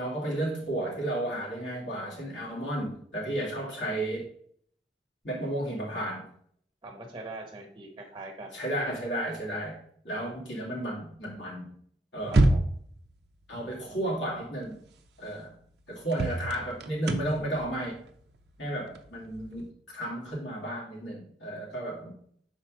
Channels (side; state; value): both; normal; correlation 0.64